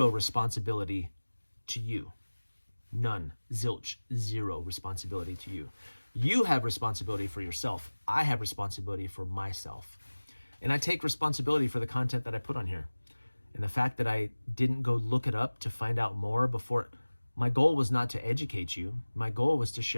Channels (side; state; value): both; inverted; correlation -1.00